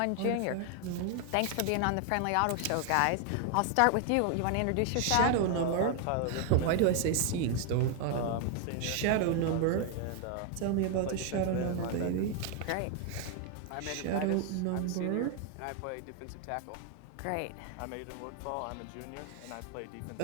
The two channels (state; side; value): different; both; correlation 0.01